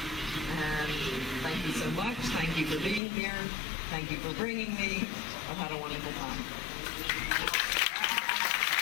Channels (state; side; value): drops out; right; at 3.0 s